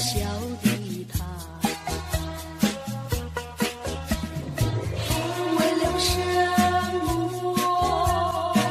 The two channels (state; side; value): identical; both; correlation 1.00